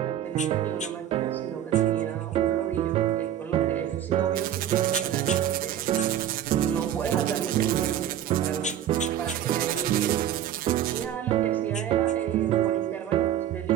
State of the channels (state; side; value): quieter; left; 10.8 dB